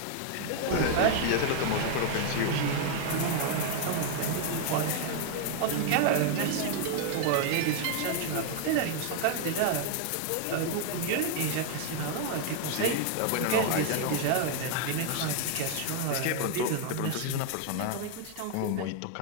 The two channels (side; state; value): both; different; correlation 0.00